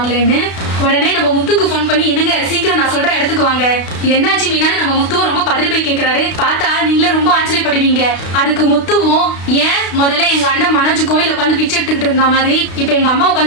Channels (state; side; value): late; right; 32 ms